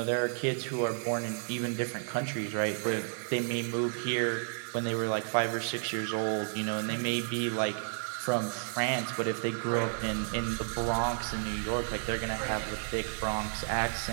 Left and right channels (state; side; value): silent; left; digital silence